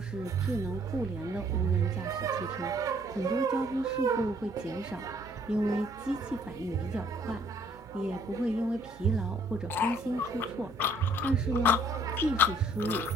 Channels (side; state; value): both; normal; correlation 0.61